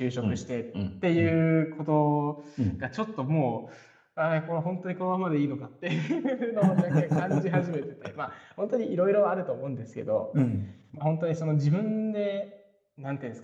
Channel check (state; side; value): identical; both; correlation 1.00